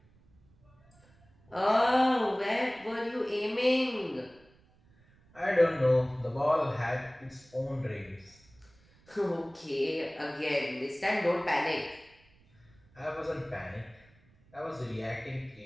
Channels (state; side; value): noise; right; rumble, 30 dB below the sound